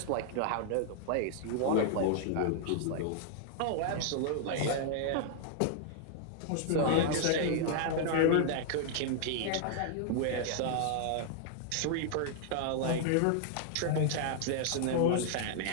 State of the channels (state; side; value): different; both; correlation -0.01